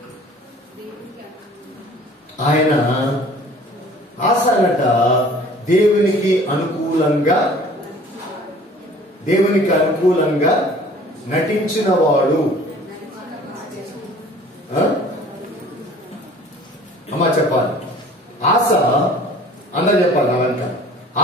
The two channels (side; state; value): both; normal; correlation 0.49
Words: ఆయన ఆశనట దేవునికి అనుకూలంగా నటించిన వాడు. అమ్మా చెప్పాలి. ఆశ అందరూ చెప్పాలి. అవంత